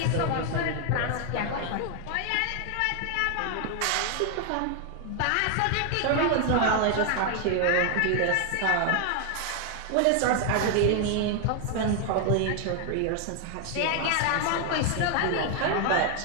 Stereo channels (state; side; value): different; both; correlation 0.00